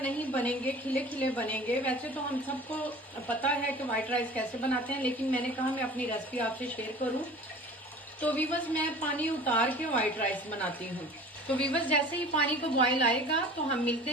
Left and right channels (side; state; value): both; normal; correlation 0.42